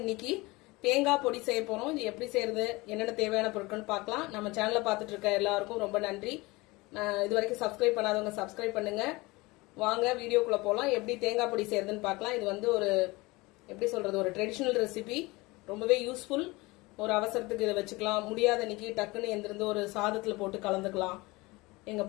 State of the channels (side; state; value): right; quieter; 22.8 dB